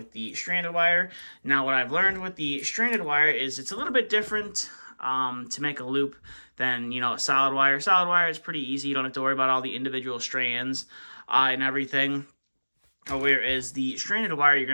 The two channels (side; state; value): both; inverted; correlation -1.00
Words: the stranded wire. Now, what I've learned with the stranded wire is it's a little bit different to make a loop than, solid wire. Solid wire is pretty easy. You don't have to worry about all the individual strands and everything. Whereas the stranded wire, you're